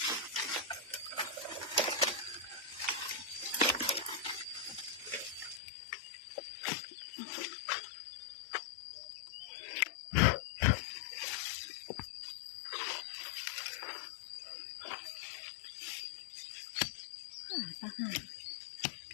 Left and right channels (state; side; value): drops out; right; at 5.6 s